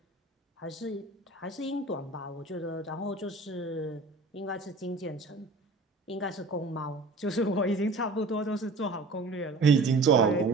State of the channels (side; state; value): left; quieter; 3.2 dB